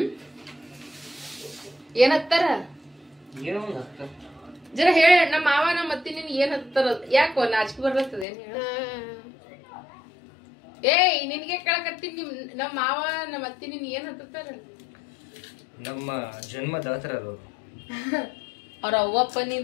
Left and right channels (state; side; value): drops out; right; at 8.2 s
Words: ಏನ್ ಹತ್ತಾರ ಜರ ಹೇಳ. ನಮ್ಮ ಮಾವ ನಮ್ಮ ಅತ್ತಿ ನಿನ್ ಏನ್ ಹತ್ತಾರ ಯಾಕೋ ನಾಚಿಕೆ ಬರ್ತದ ಏನ್ ಹೇಳ. ನಿನ್ಗೆ ಕೇಳಕತ್ತೀನಿ ನಮ್ಮ ಮಾವ ನಮ್ಮ ಅತ್ತಿ ನಿನ್ ಏನ್ ಹತ್ತಾರ ನಮ್ಮ ಜನ್ಮದಾತರ ಅವ್ರ ಅವ್ವಪ್ಪ